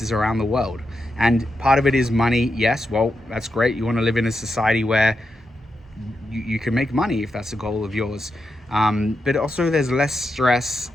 around the world? And part of it is money. Yes, well, that's great. You want to live in a society where you can make money if that's a goal of yours. But also there's less stress.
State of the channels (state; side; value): normal; both; correlation 0.86